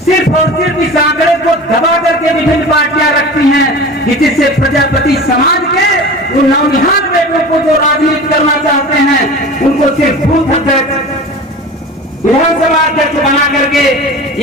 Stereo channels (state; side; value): normal; both; correlation 0.35